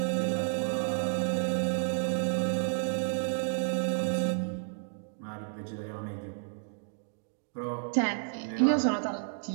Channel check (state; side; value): silent; left; digital silence